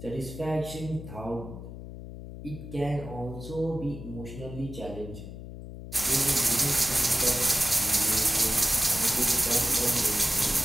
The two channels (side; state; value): left; noise; hum, 11 dB below the sound